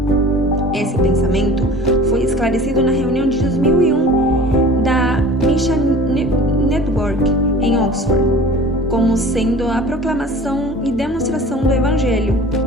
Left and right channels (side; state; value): both; normal; correlation 0.42